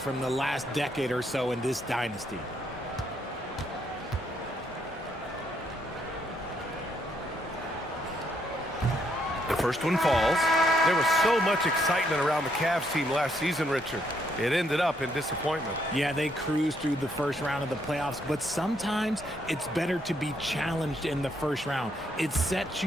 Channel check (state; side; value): normal; both; correlation 0.73